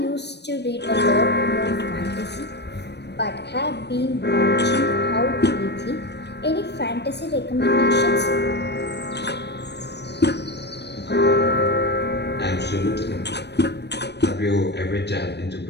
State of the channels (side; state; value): right; late; 0.49 ms